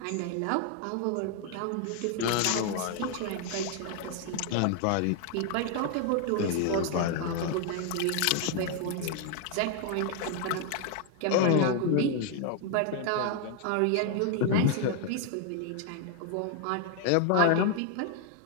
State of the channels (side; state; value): both; different; correlation 0.00